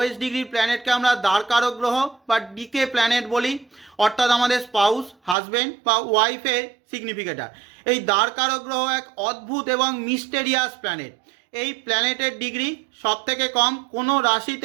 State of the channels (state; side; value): drops out; left; at 5.4 s